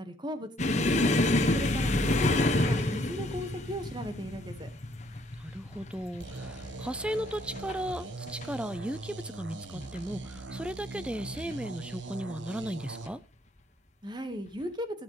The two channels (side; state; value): both; normal; correlation 0.67